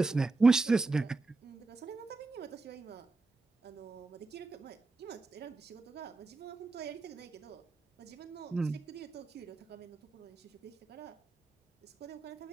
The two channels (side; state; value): left; quieter; 3.6 dB